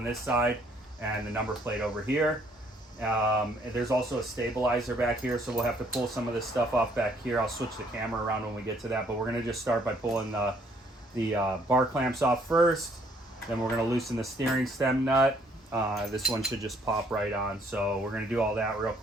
this side, and the number plate over here. And there's also a stabilizer back here, so we'll have to pull some of this stuff off back here. I'll switch the camera around when we get to that, but we're going to just start by pulling the bar clamps off first. Then we're going to loosen the steering stem nut. This one should just pop right on, so we're going to do all that real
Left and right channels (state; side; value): normal; both; correlation 0.65